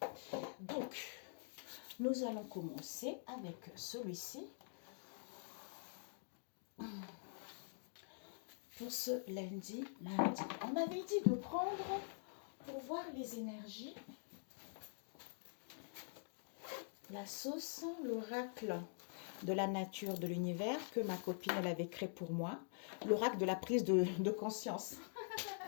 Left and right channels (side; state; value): right; silent; digital silence